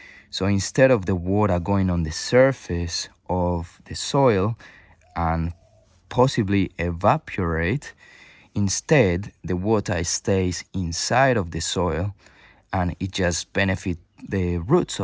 So instead of the water going on the surface of the soil and possibly evaporate, instead the water stays inside of the soil, and it just benefits the roots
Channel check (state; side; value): identical; both; correlation 1.00